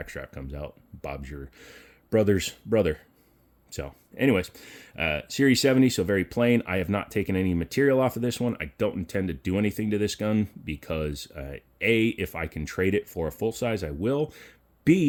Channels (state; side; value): identical; both; correlation 1.00